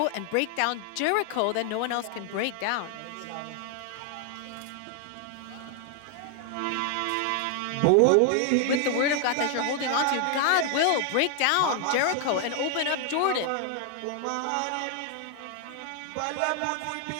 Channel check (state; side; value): different; both; correlation 0.00